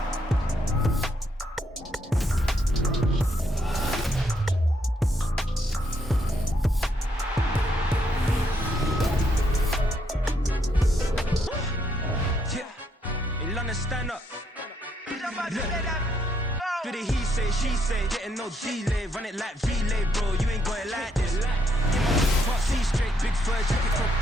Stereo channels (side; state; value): both; normal; correlation 0.75